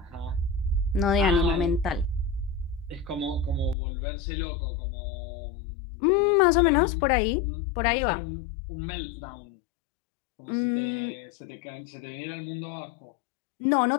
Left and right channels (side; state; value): right; drops out; at 3.8 s